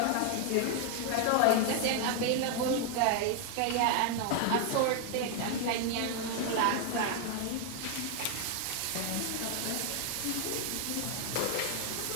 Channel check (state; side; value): different; both; correlation 0.00